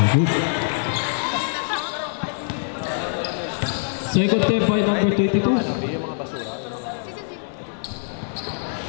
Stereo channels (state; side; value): silent; right; digital silence